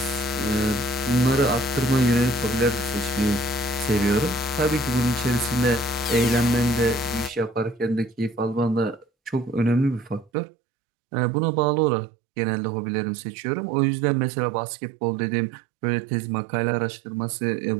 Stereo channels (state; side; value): drops out; left; at 10.3 s